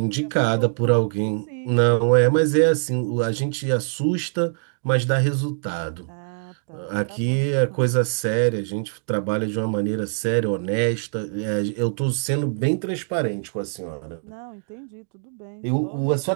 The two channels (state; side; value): silent; left; digital silence